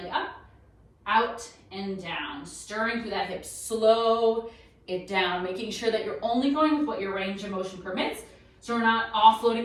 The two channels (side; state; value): both; identical; correlation 1.00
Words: up, out and down, stirring through that hip. Slow it down, making sure that you're only going with what your range of motion permits. So we're not offloading